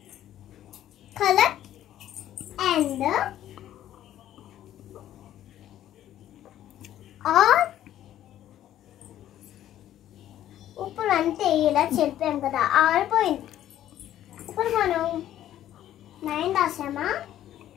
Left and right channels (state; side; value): quieter; right; 12.2 dB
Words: కలర్ అండ్ ఆర్ ఇప్పుడు అంటే ఇలా చెప్పాం కదా, ఆరిపోయింది. ఇప్పుడు మనం 9 రాసామా,